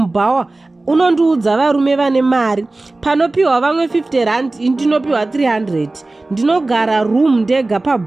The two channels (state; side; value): quieter; left; 3.1 dB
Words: unondiudza varume vane mari. Panopiwa vamwe 50 rand, ndinopiwa 300. Ndinogara room ndega